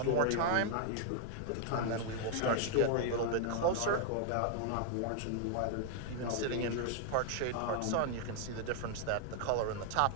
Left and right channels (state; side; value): different; both; correlation 0.00